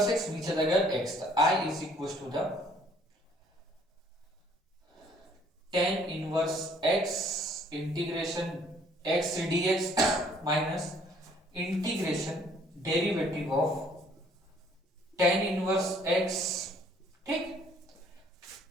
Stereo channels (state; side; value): normal; both; correlation 0.61